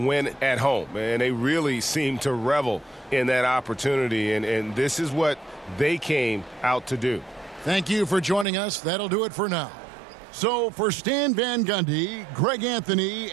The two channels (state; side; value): drops out; left; at 8.5 s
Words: at home. And they really seem to revel in that opportunity, and this is what they came out to do. Thank you for joining us. That'll do it for now. So for Stan Van Gundy, Greg Anthony,